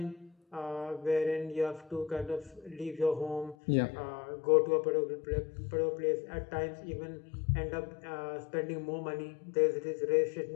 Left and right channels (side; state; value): right; drops out; at 3.6 s